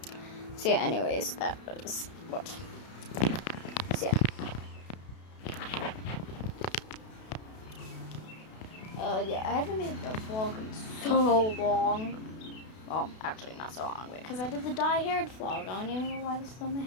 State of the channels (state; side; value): late; right; 32 ms